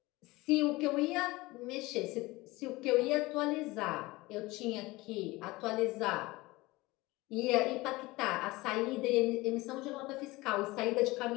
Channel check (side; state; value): right; quieter; 21.0 dB